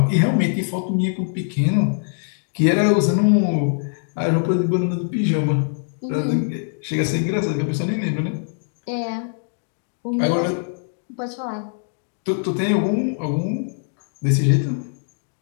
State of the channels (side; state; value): right; silent; digital silence